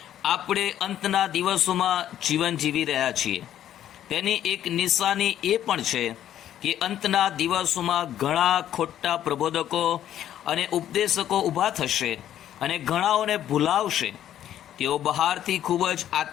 આપણે અંતના દિવસોમાં જીવન જીવી રહ્યા છીએ. તેની એક નિશાની એ પણ છે કે અંતના દિવસોમાં ઘણા ખોટા પ્રબોધકો અને ઉપદેશકો ઊભા થશે અને ઘણાઓને ભૂલાવશે. તેઓ બહારથી ખૂબ જ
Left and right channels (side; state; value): right; quieter; 11.3 dB